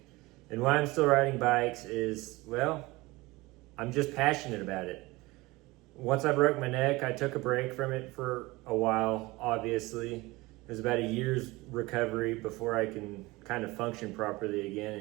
And why I'm still riding bikes is, well, I'm just passionate about it. Once I broke my neck, I took a break from it for a while, obviously. It was about a year's recovery before I can kind of function properly again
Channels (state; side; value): quieter; left; 21.5 dB